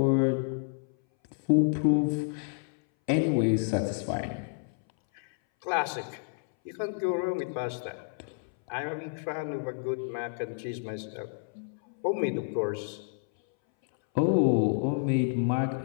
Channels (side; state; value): right; silent; 58 dB below the other